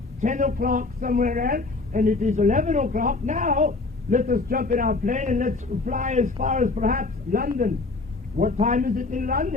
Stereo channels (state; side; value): quieter; right; 3.6 dB